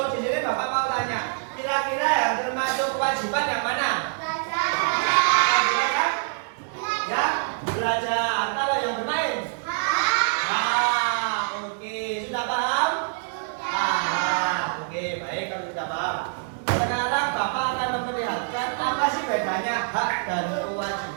di sini Bapak mau tanya, kira-kira yang termasuk kewajiban yang mana? Belajar? Ya, belajar. Kalau yang bermain? Nah, oke. Sudah paham? Paham. Oke, baik kalau sudah paham. Sekarang Bapak akan memperlihatkan apa sih bedanya hak dan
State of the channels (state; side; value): silent; left; 62 dB below the other